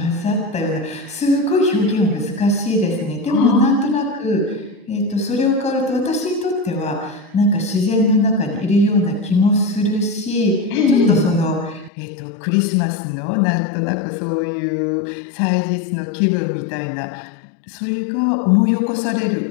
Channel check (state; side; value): drops out; right; at 11.9 s